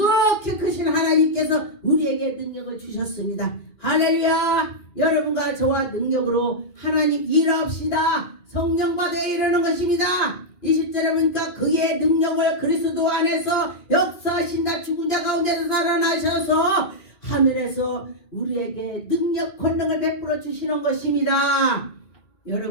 크신 하나님께서 우리에게 능력을 주셨습니다. 할렐루야. 여러분과 저와 능력으로 하나님 일합시다. 성령 받아야 이러는 것입니다. 20절에 보니까 그의 능력을 그리스도 안에서 역사하신다. 죽은 자 가운데서 살아나셔서 하늘에서 우리에게 능력 권능을 베풀어 주시는 것입니다.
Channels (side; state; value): right; late; 2.5 ms